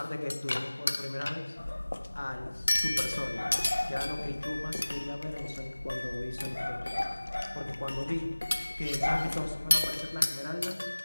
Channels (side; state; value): both; inverted; correlation -1.00